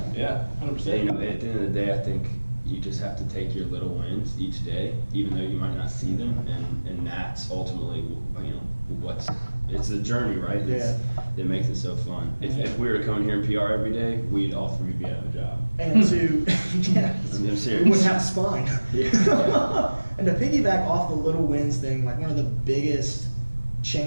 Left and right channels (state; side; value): inverted; both; correlation -1.00